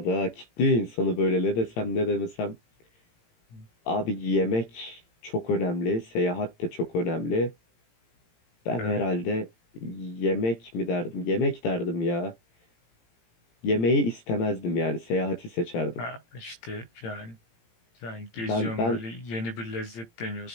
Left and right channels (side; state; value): right; late; 18 ms